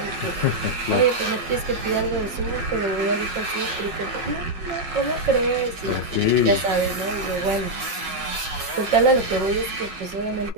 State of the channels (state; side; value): late; left; 5.5 ms